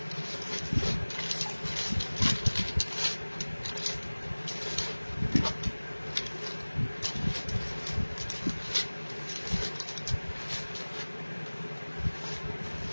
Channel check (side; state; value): both; inverted; correlation -1.00